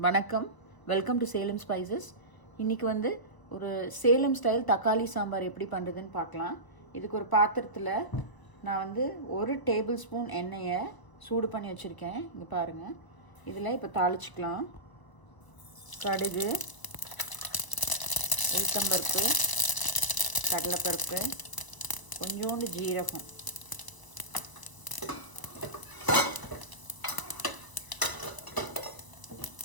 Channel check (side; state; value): right; late; 1.0 ms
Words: வணக்கம், welcome to Salem spices. இன்றைக்கி வந்து ஒரு சேலம் ஸ்டைல் தக்காளி சாம்பார் எப்படி பண்ணுறதுன்னு பார்க்கலாம். இதுக்கு ஒரு பாத்திரத்தில் நான் வந்து 1 டேபிள் ஸ்பூன் எண்ணெயை சூடு பண்ணி வச்சுருக்கேன். இங்கே பாருங்கள். இதில் இப்போ தாளிச்சிக்கலாம். கடுகு, உளுத்தம்பருப்பு, கடலைப்பருப்பு, கொஞ்சோண்டு ஜீரகம்,